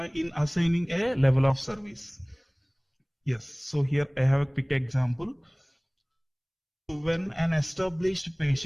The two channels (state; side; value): identical; both; correlation 1.00